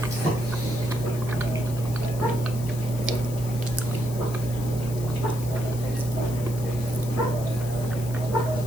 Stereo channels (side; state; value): left; noise; hiss, 14 dB below the sound